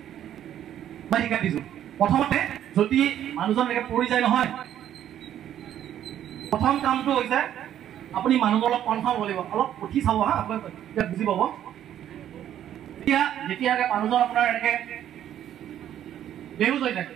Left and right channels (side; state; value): left; quieter; 10.9 dB